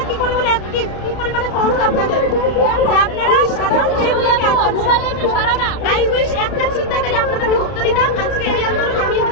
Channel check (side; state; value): right; late; 32 ms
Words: কি পরিমাণে অ্যাক্টিভ, কি পরিমাণে ফোর্স আপনাদের, যে আপনারা সাধারণ মেয়েগুলোকে আটকাচ্ছেন। আই উইশ একটা চিন্তাকারী আপনাদেরকে ধরতে দিতাম, আজকে এই আন্দোলন আমি